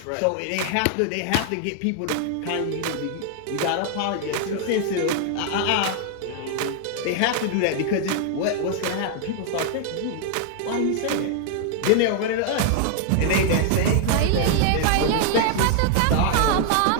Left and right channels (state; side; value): different; both; correlation 0.00